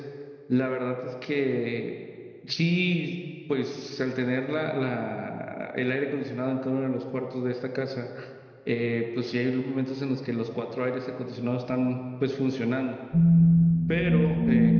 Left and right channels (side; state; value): both; identical; correlation 1.00